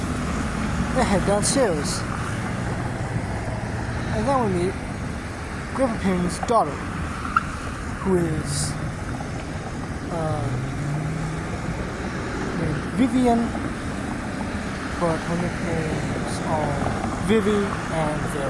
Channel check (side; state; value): both; identical; correlation 1.00